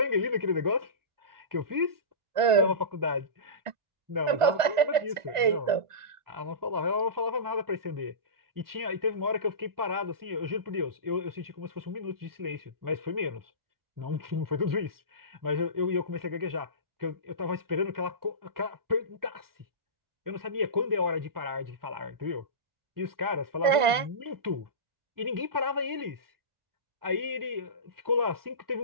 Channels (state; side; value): late; left; 1.5 ms